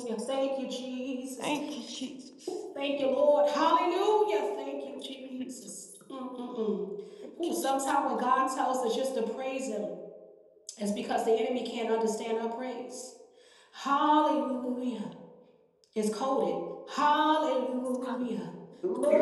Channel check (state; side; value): identical; both; correlation 1.00